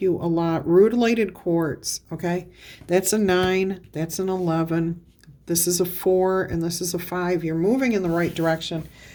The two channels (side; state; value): both; identical; correlation 1.00